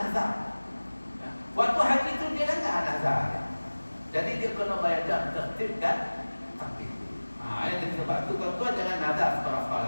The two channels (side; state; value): both; inverted; correlation -1.00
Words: Waktu haji itu dia langgar nazar. Jadi dia kena bayar dalam tertib dan takdir. Jadi sebab itu tuan-tuan jangan nazar